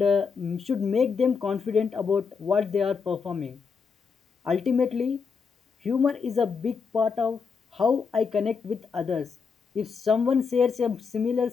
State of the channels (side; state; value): right; quieter; 5.6 dB